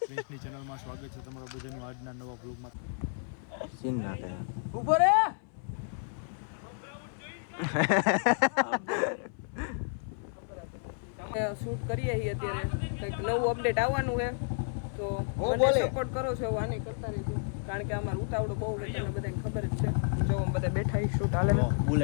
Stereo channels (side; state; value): right; silent; 57 dB below the other